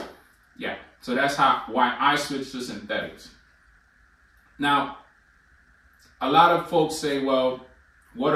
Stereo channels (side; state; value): both; identical; correlation 1.00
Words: yeah, so that's why I switched to synthetics. Now, a lot of folks say, well, what